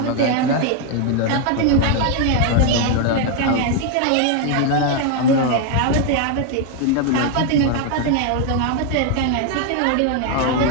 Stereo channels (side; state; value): both; different; correlation 0.01